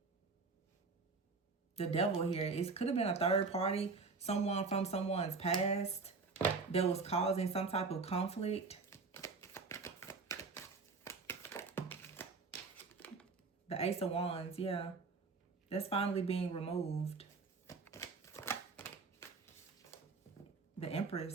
the Devil here. It could have been a third party, someone from someone's past that was causing some type of conflict. The Ace of Wands, yeah. That's finally being removed. The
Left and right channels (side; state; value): left; quieter; 4.3 dB